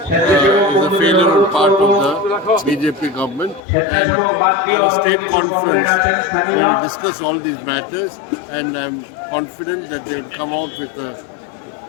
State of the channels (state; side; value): drops out; right; at 3.6 s